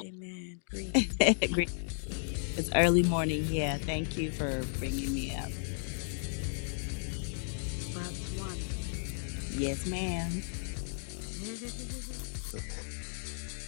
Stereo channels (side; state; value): right; silent; digital silence